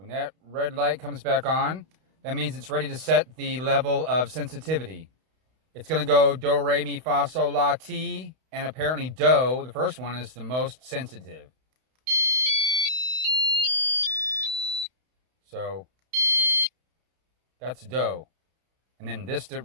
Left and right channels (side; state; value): left; late; 31 ms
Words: that red light comes back on, that means it's ready to set the level of sensitivity. It's going to go do, re, mi, fa, sol, la, ti, and apparently do, the first one, is the most sensitive. So that's do. And then this to